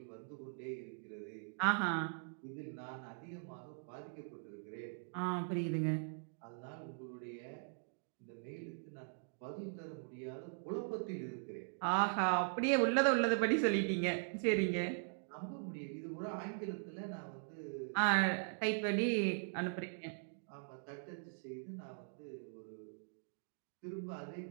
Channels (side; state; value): left; silent; digital silence